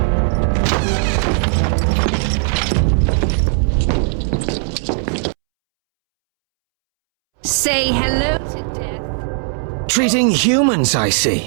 Say hello to death. Treating humans, I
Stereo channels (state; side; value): silent; left; 68 dB below the other